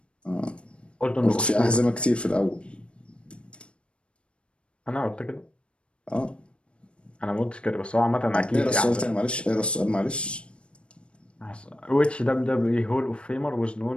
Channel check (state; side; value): late; right; 0.058 ms